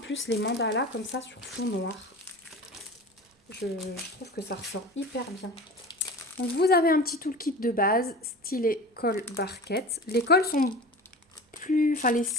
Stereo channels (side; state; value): both; normal; correlation 0.35